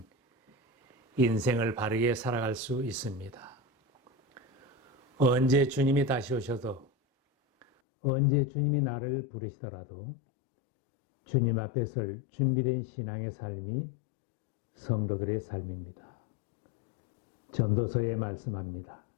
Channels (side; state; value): right; drops out; at 7.7 s